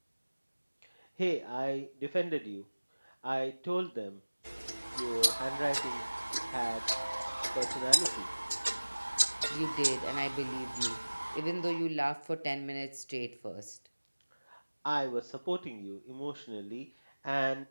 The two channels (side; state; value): both; inverted; correlation -1.00